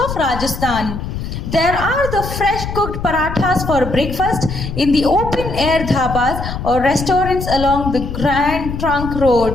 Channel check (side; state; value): left; noise; rumble, 6 dB below the sound